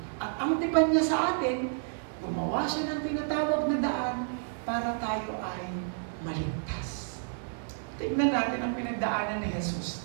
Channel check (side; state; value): left; silent; digital silence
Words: At ang tipan niya sa atin, gumawa siya ng tinatawag na daan para tayo ay maligtas. Tignan natin ang pinagdaanan ni Jesus